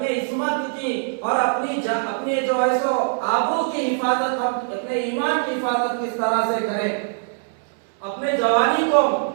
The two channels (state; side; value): silent; left; 64 dB below the other